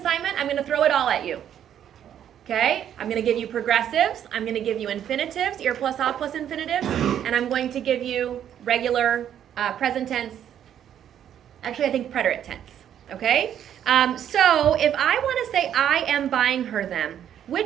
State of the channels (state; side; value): quieter; left; 9.9 dB